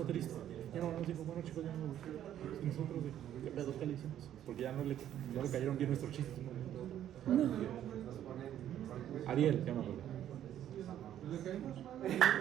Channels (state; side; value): quieter; left; 11.1 dB